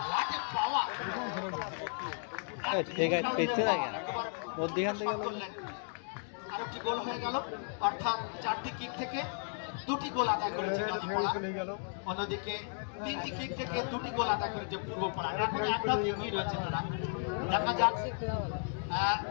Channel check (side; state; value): right; silent; 55 dB below the other